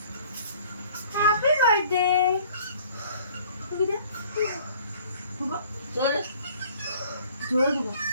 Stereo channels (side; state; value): both; inverted; correlation -0.54